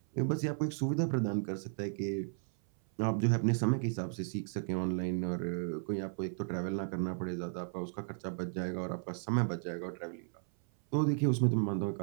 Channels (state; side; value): silent; left; 55 dB below the other